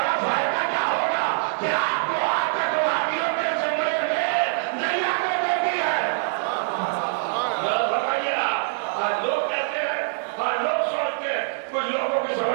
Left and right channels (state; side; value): silent; left; 62 dB below the other